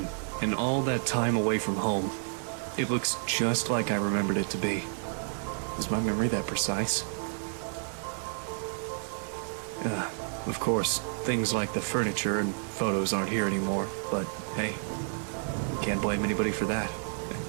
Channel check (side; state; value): left; silent; 58 dB below the other